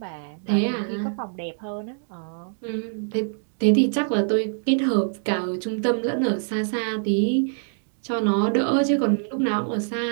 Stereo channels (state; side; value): silent; left; digital silence